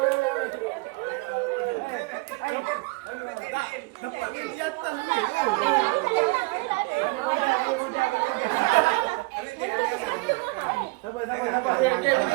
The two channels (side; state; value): left; quieter; 26.0 dB